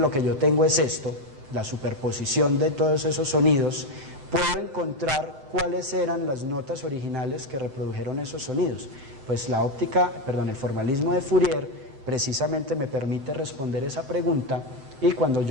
que yo tengo es esto, la superposición de todos esos sonidos, puedo encontrar cuáles eran las notas originales que reprodujeron esos sonidos. Pues el formalismo de Fourier precisamente me permite responder esa pregunta, y cuando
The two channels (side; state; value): left; late; 7.7 ms